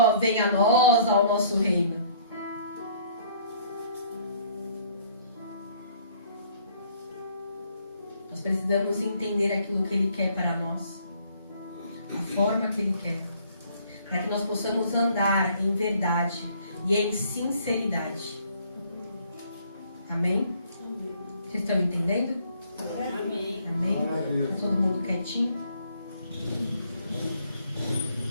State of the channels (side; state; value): both; inverted; correlation -0.61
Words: venha a nós, ao nosso reino. Nós precisamos entender aquilo que ele quer para nós. A forma que ele quer. Para que nós possamos andar em verdade e em sinceridade. Amém? Vocês estão entendendo? Amém. Amém? Tá todo mundo quietinho?